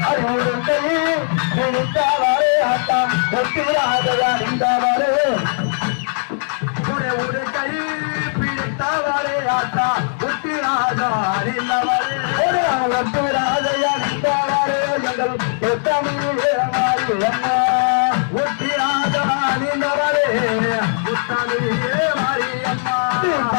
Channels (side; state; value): right; silent; digital silence